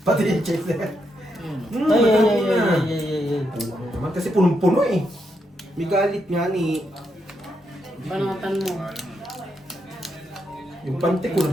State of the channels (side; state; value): both; normal; correlation 0.81